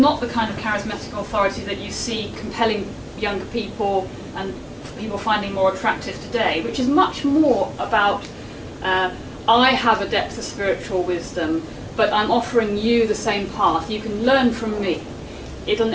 authority that you see compelling younger people and people finding more attractive today, which is much more about I have a depth of spiritual wisdom, but I'm offering you the same path. You can learn from me. It'll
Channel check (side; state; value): both; identical; correlation 1.00